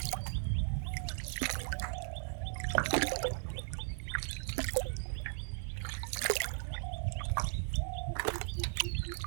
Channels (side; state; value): left; silent; digital silence